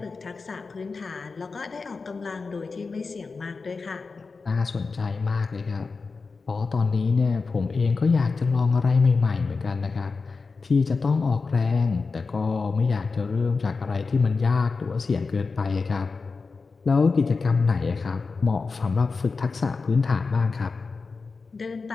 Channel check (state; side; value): quieter; right; 4.4 dB